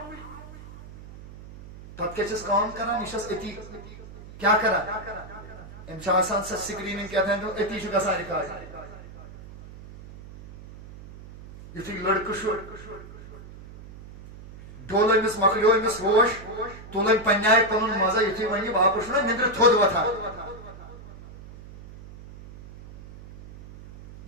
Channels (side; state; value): right; noise; hum, 16 dB below the sound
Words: پتہ کیا چھس کام کران یہ اتی کیا کران امس آسان سا سکریننگ کیا تھا اتی چھ گژھان ریکارڈ یتھے لڑکہ ڈول امس مکلیو امس ہوش تُلن پنہ آیہِ پنن مزہ یتھے ون یہ واپس چھُنہ نندر تھوٚد وتھان